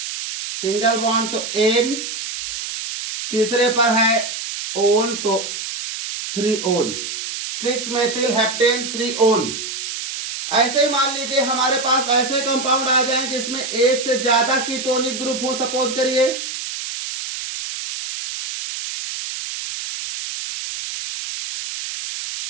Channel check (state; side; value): noise; right; hiss, 6 dB below the sound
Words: सिंगल बॉन्ड तो एन। तीसरे पर है ओन तो 3 ओन, 6 मेथिल हेप्टेन 3 ओन। ऐसे ही मान लीजिए हमारे पास ऐसे कंपाउंड आ जाएं जिसमें एक से ज्यादा कीटोनिक ग्रुप हो। सपोज करिए